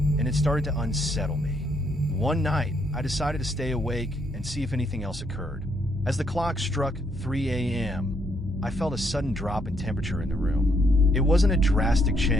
it started to unsettle me. One night, I decided to stay awake and see if anything else occurred. As the clock struck 3 a.m., I felt a sudden drop in temperature in the room. It wasn't a drastic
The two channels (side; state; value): both; normal; correlation 0.73